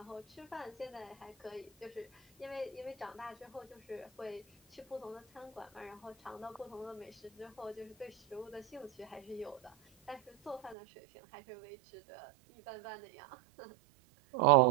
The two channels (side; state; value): left; drops out; at 10.8 s